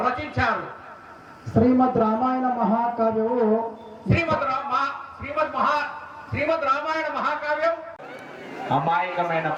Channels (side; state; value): both; identical; correlation 1.00